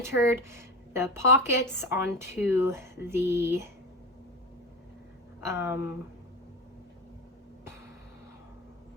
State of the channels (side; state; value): both; normal; correlation 0.24